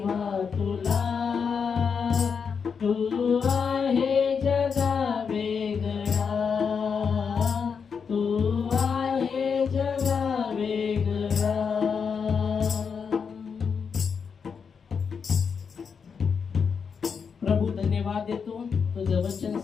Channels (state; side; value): quieter; right; 6.2 dB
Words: तुला, तू आहे जगा वेगळा, तू आहे जगा वेगळा। प्रभू धन्यवाद देतो, तुझं वचन